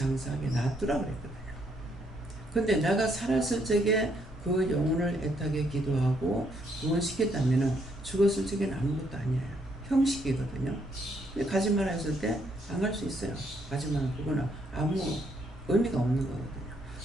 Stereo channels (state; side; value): normal; both; correlation 0.72